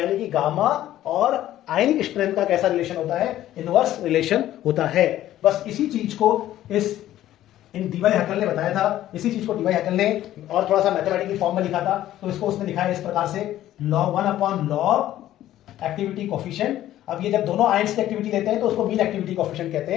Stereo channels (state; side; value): quieter; right; 13.3 dB